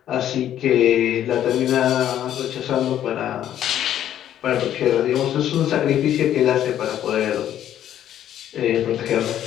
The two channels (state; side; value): quieter; right; 11.1 dB